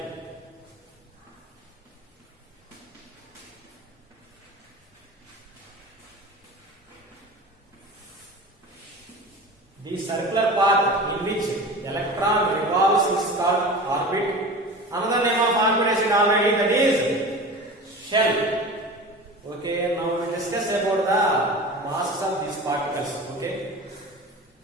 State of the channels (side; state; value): both; normal; correlation 0.34